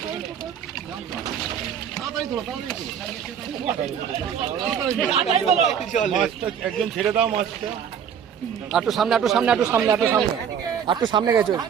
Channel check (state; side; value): quieter; left; 8.2 dB